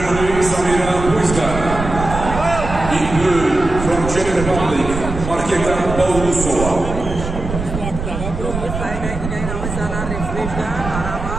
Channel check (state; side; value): noise; right; rumble, 6 dB below the sound